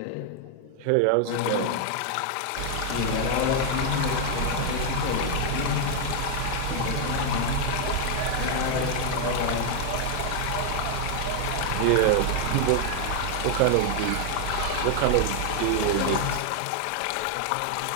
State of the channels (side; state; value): both; different; correlation 0.00